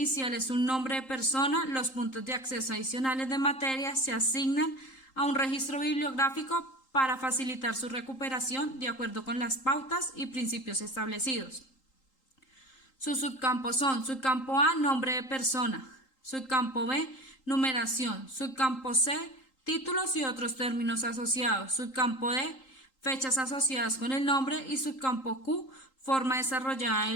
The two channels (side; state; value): right; late; 3.8 ms